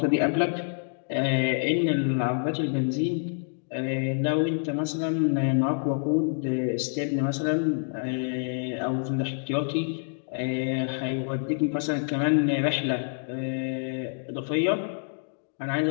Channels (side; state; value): right; silent; digital silence